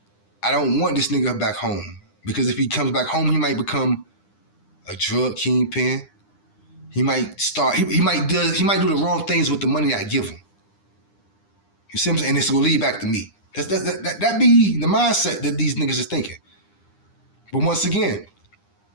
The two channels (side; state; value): right; late; 9.9 ms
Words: I don't want this nigga back home, because if he comes back home, he might become a drug kingpin. He might start. He might do the wrong things with the money I give him. You see what I'm saying? And it's gonna lead back to me. That be the mindset that these niggas is thinking. But once again,